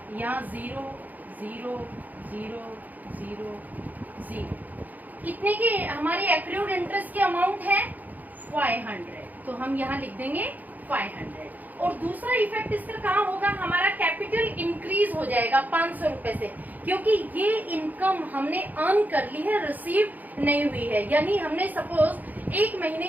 यहाँ 0 0 0 0 0 कितने की हमारी एक्रूड इंटरेस्ट की अमाउंट है 500, तो हम यहाँ लिख देंगे 500। और दूसरा इफेक्ट इसका कहाँ होगा, हमारा कैपिटल इंक्रीज हो जाएगा 500 रुपए से, क्योंकि ये इनकम हमने अर्न कर ली है, रिसीव नहीं हुई है। यानी हमने सपोज 1 महीने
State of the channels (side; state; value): left; late; 0.082 ms